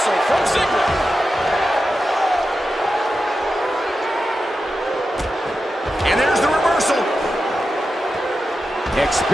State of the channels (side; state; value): both; normal; correlation 0.91